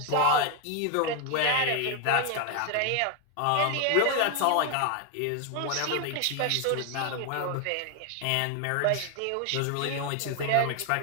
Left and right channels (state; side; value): different; both; correlation 0.01